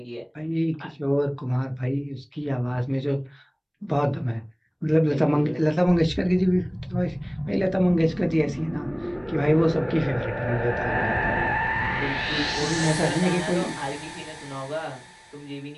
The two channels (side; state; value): both; identical; correlation 1.00